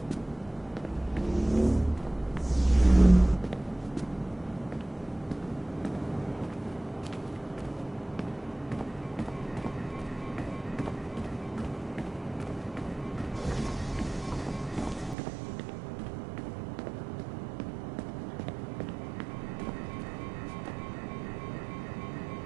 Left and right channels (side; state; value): left; drops out; at 15.2 s